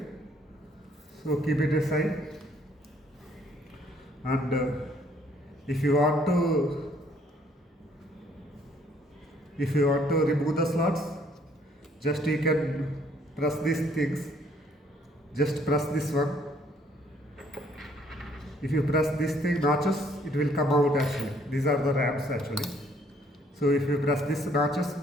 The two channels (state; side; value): normal; both; correlation 0.64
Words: So keep it aside, and if you want to remove the slots, just you can press these things. Just press this one. If you press this thing notches, it will come out actually. These are the RAMs actually. So if you press this notches,